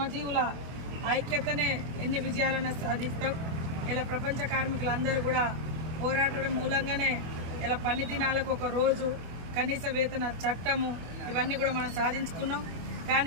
ఐక్యతనే ఎన్ని విజయాలను సాధిస్తాం. ఇలా ప్రపంచ కార్మికులందరూ కూడా పోరాటం మూలంగానే ఇలా పని దినాలకు ఒక రోజు, కనీస వేతన చట్టము, ఇవన్నీ కూడా మనం సాధించుకున్నాం.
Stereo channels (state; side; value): late; left; 25 ms